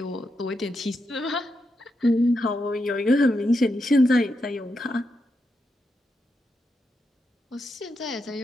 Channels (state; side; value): normal; both; correlation 0.85